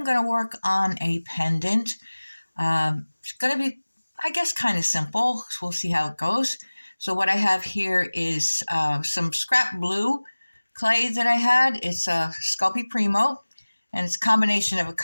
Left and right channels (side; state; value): both; inverted; correlation -1.00